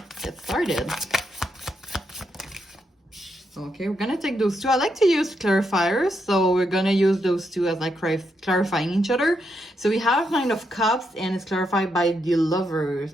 get started. Okay, we're gonna take those two. I like to use clarifiers, so we're gonna use those two as like clarifying each other. So we have Nine of Cups, and it's clarified by the Lovers.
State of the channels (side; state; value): both; normal; correlation 0.81